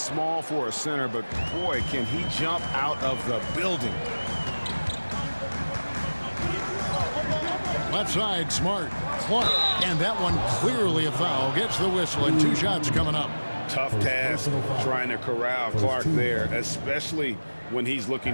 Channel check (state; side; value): inverted; both; correlation -1.00